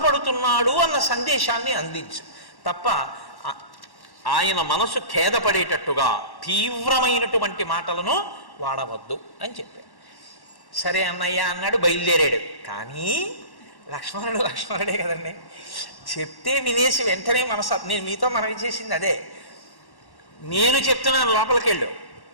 అన్న సందేశాన్ని అందించు తప్ప ఆయన మనసు ఖేదపడేటట్టుగా తీవ్రమైనటువంటి మాటలను వాడవద్దు అని చెప్పాడు. సరే అన్నయ్య అన్నాడు, బయలుదేరాడు. కానీ లక్ష్మణుడే కదండి, చెప్తే వినేసి వెంటనే నేను మీతో మనవి చేసింది అదే. నేను చెప్తున్నాను లోపలికి వెళ్ళు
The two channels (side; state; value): right; late; 1.1 ms